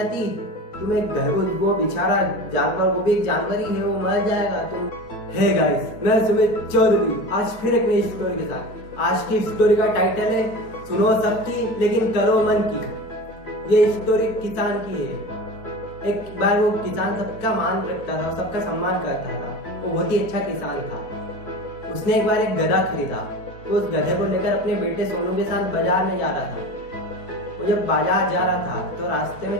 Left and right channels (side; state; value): right; late; 4.5 ms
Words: तुम्हें घर वो बेचारा जानवर, वो भी एक जानवर ही है, वो मर जाएगा। तुम हे गाइस, मैं सुमित चौधरी आज फिर एक नई स्टोरी के साथ। आज की स्टोरी का टाइटल है सुनो सबकी लेकिन करो मन की। ये स्टोरी किसान की है। एक बार वो किसान सबका मान रखता था, सबका सम्मान करता था। वो बहुत ही अच्छा किसान था। उसने एक बार एक गधा खरीदा। वो उस गधे को लेकर अपने बेटे सोनू के साथ बाजार में जा रहा था। वो जब बाजार जा रहा था तो रास्ते